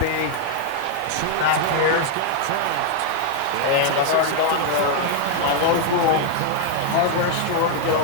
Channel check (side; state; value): both; different; correlation 0.00